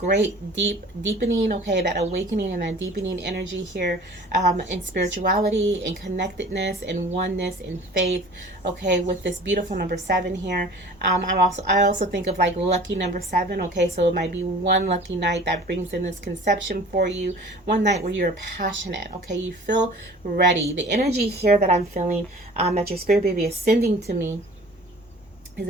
deepening, okay, that awakening and that deepening energy here, in spirituality, in connectedness, in oneness, in faith, okay, with this beautiful number 7 here. I also think of like lucky number 7, okay, so it might be one lucky night that brings in this conception for you, one night where you're passionate, okay, you feel ready. The energy here that I'm feeling, that your spirit baby is sending to me, is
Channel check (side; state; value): both; normal; correlation 0.46